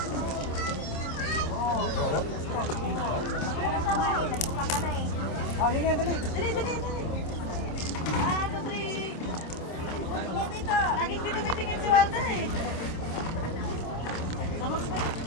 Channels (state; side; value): late; right; 26 ms